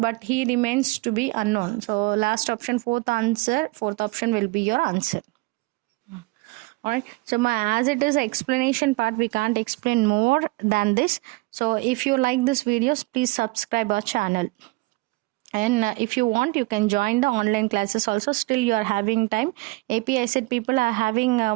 he remains to be unknown. So last option, fourth option will be your answer. Alright, so as it is an explanation part, we can't explain more than this. So if you like this videos, please subscribe our channel. And if you want, you can join the online classes also. Still you are having time. API set people are having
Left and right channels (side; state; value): left; quieter; 23.8 dB